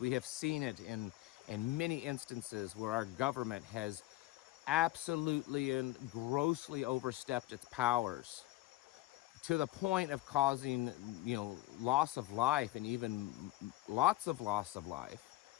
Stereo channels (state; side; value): quieter; right; 17.7 dB